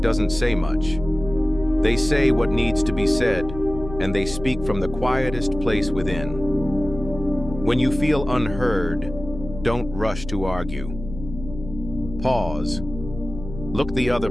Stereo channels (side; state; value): left; noise; hum, 11 dB below the sound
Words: doesn't say much. They say what needs to be said, and they speak from the quietest place within. When you feel unheard, don't rush to argue. Pause. Look the other